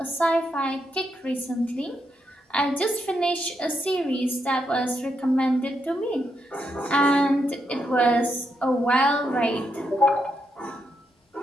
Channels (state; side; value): normal; both; correlation 0.81